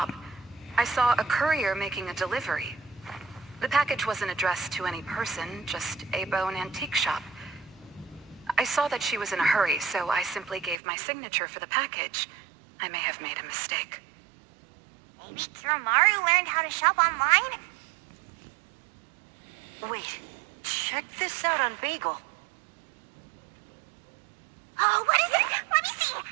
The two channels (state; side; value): drops out; left; at 10.8 s